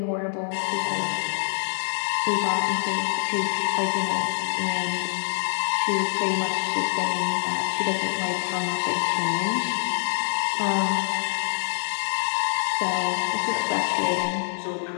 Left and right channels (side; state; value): right; silent; 59 dB below the other